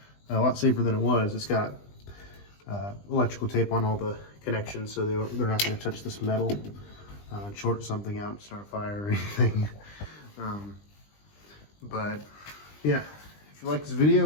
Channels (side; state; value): right; late; 20 ms